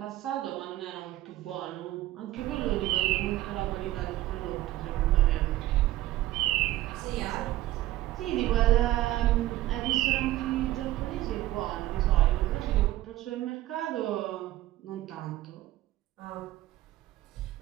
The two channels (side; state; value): left; quieter; 15.6 dB